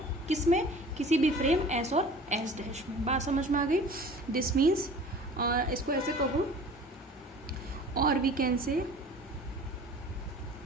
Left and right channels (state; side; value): normal; both; correlation 0.44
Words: किसमें? किसी भी फ्रेम S और S डैश में। बात समझ में आ गई? दिस मीन्स, इसको ऐसे कहो, और we can say